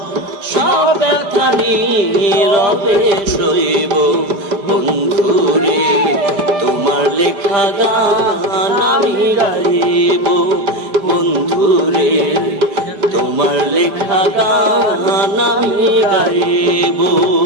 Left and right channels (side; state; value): left; late; 5.0 ms